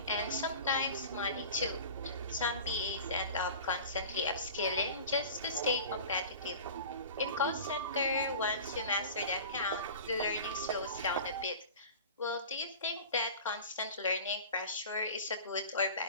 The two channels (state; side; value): inverted; both; correlation -0.37